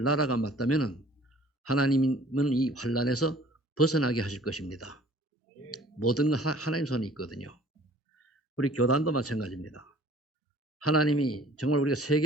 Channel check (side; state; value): both; normal; correlation 0.52